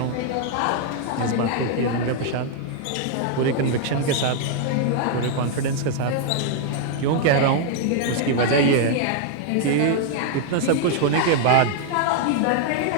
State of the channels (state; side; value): different; both; correlation 0.00